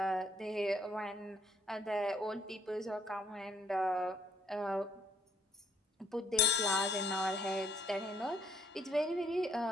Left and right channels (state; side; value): normal; both; correlation 0.66